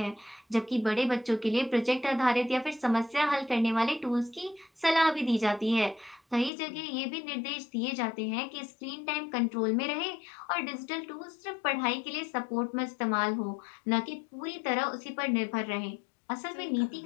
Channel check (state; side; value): drops out; right; at 6.5 s